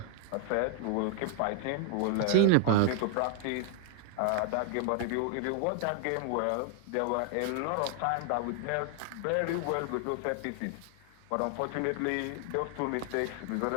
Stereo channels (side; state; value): both; different; correlation 0.00